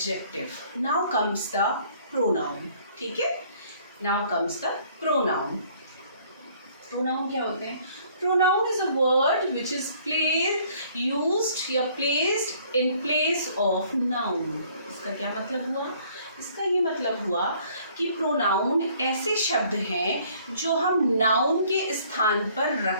Now comes the pronoun. ठीक है, now comes the pronoun. Pronoun क्या होते हैं? Pronoun is a word which is used या placed in place of noun. इसका क्या मतलब हुआ? इसका ये मतलब हुआ कि प्रोनाउन ऐसे शब्द हैं जो हम नाउन के स्थान पर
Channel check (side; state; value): both; inverted; correlation -0.59